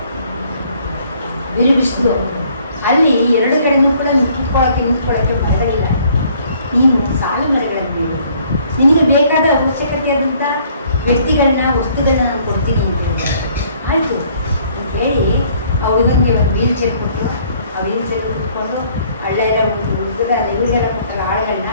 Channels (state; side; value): inverted; both; correlation -0.61